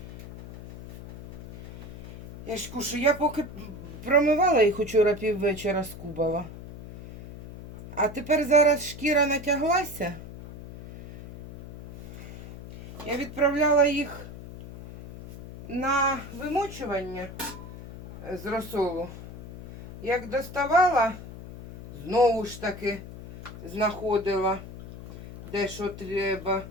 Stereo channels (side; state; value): left; noise; hum, 12 dB below the sound